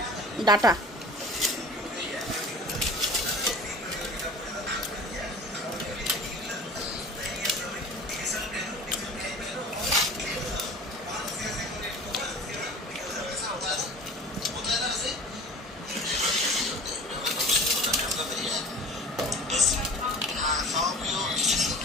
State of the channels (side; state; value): both; normal; correlation 0.40